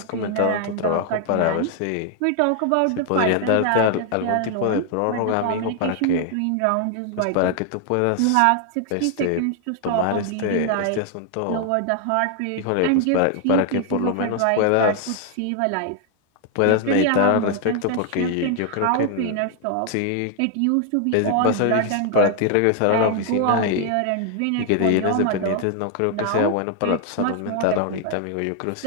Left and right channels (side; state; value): both; different; correlation 0.00